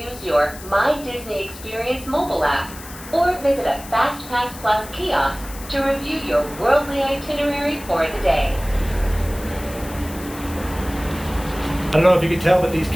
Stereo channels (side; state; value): left; noise; hiss, 16 dB below the sound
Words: your My Disney Experience mobile app or visit a FastPass Plus kiosk to review your worldly itinerary for the day. I don't know if you can tell, but these